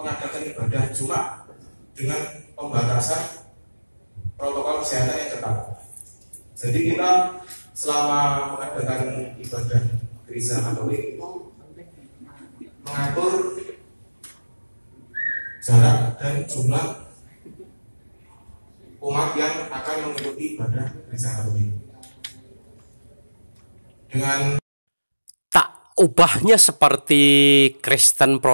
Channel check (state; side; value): inverted; both; correlation -1.00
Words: ibadah Jumat dengan pembatasan protokol kesehatan yang ketat. Jadi kita selama mengadakan ibadah gereja Katolik itu mengatur jarak dan jumlah umat yang akan mengikuti ibadah gereja Katolik. Dengan tak ubahnya seperti Kristen